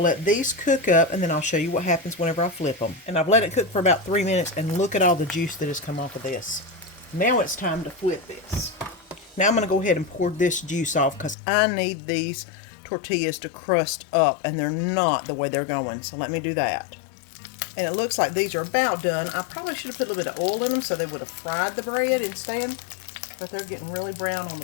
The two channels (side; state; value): right; drops out; at 11.4 s